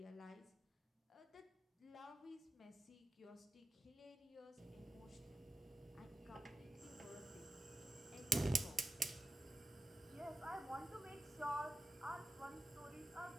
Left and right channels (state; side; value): normal; both; correlation 0.91